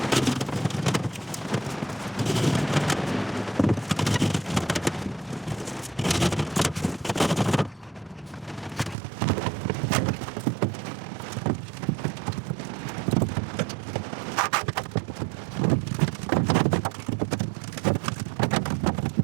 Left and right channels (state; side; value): drops out; left; at 9.0 s